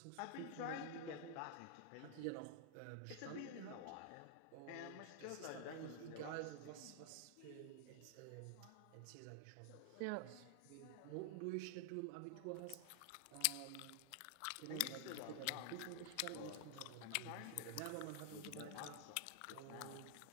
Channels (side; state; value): both; different; correlation 0.00